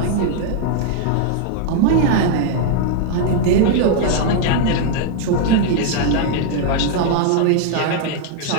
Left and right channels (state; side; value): different; both; correlation 0.00